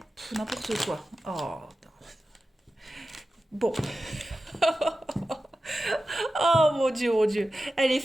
n'importe quoi. Oh, bon. Oh mon Dieu. Elle est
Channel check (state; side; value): normal; both; correlation 0.93